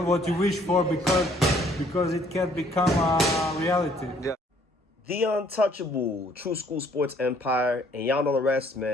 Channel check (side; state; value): both; normal; correlation 0.62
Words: what you wish for because it can become a reality. Yeah. The untouchable true school sports empire, and y'all know the rest,